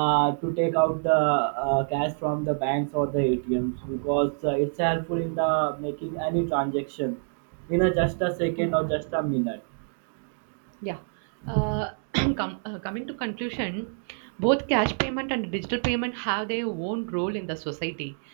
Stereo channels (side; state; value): left; silent; digital silence